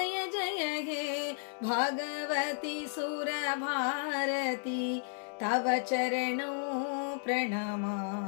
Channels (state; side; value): silent; right; digital silence